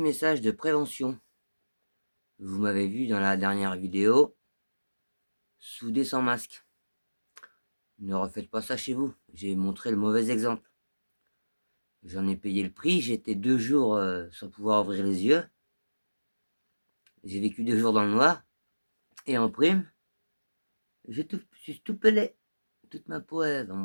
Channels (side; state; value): both; inverted; correlation -1.00